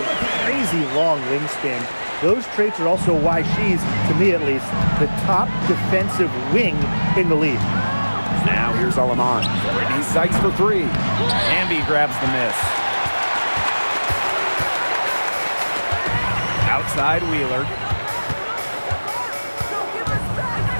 crazy long wingspan. Those traits are also why she's, to me at least, the top defensive wing in the league. Now here's Alaman. Brittany Sykes for 3. Amby grabs the miss. Outside Wheeler.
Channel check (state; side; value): inverted; both; correlation -1.00